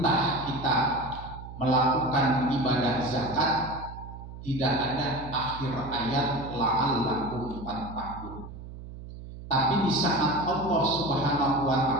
kita melakukan ibadah zakat tidak ada akhir ayat la'allakum tattaqun. Tapi di saat Allah Subhanahu wa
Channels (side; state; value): right; noise; hum, 13 dB below the sound